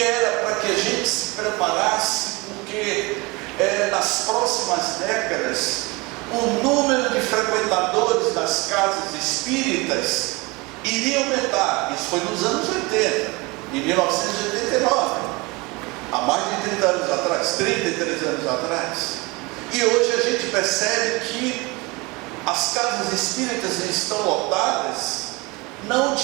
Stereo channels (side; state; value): left; quieter; 25.2 dB